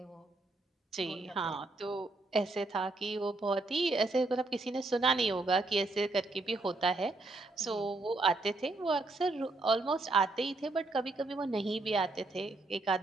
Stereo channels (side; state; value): left; quieter; 3.1 dB